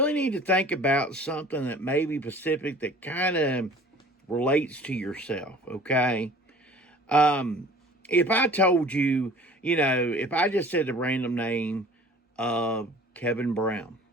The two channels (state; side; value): normal; both; correlation 0.47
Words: need to think about something that may be specific that kind of relates to yourself. Okay. If I told you, if I just said the random name of Kevin Brown,